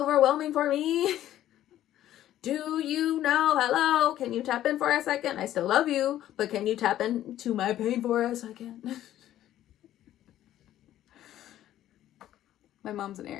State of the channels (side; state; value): right; quieter; 12.6 dB